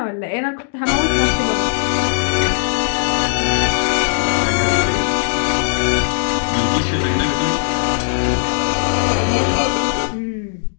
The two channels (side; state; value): right; silent; digital silence